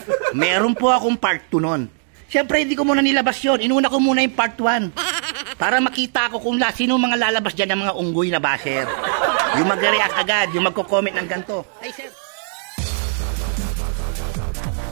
Meron po akong part 2 nun. Siyempre, hindi ko muna nilabas yun. Inuna ko muna yung part 1. Para makita ko kung sino mga lalabas dyan ng mga unggoy na basher. Yung mag-react agad, yung magko-comment ng ganito. Ay, sir.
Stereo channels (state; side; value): silent; left; digital silence